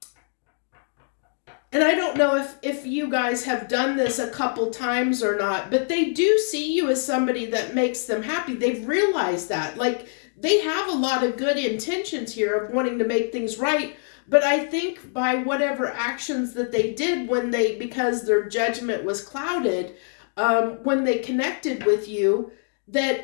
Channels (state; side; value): silent; right; 60 dB below the other